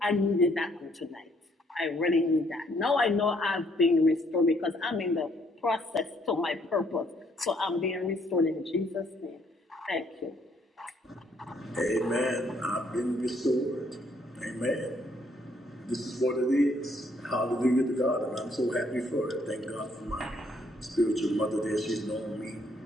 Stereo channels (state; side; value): normal; both; correlation 0.68